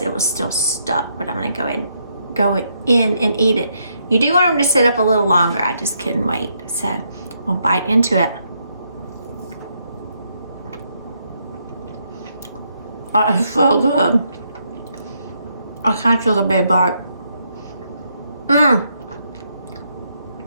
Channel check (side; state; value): both; inverted; correlation -0.76